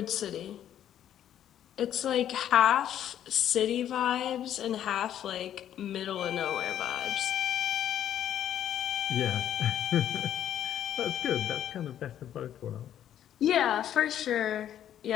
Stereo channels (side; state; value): right; quieter; 10.7 dB